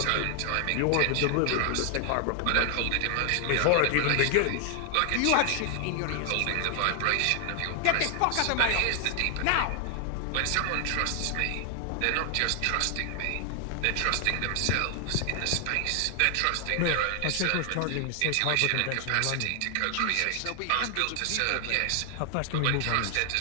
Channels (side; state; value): both; different; correlation 0.00